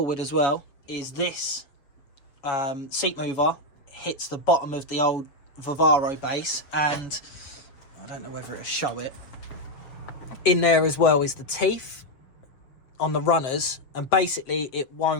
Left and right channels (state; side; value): late; right; 6.9 ms